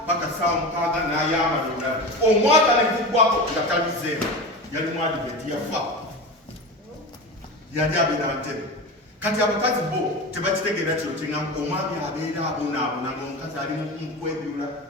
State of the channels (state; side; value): normal; both; correlation 0.27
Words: paka ssaawa 6 n'ayambala olulala omwaka ne guggwako nga talizeemu yali mwadiventi yafa yali abeera ntebe kati abakazi bo tebakitegeera kino kyeŋŋamba omwami abeera abonaabona ng'omukazi ali mu kwebyula